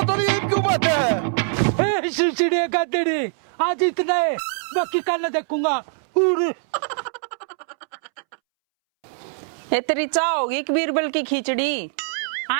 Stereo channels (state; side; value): silent; left; 64 dB below the other